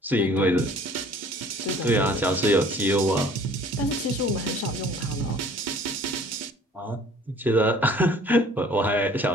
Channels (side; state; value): both; normal; correlation 0.52